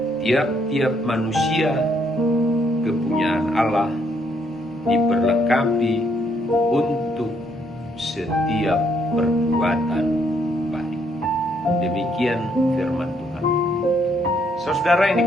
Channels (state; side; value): normal; both; correlation 0.71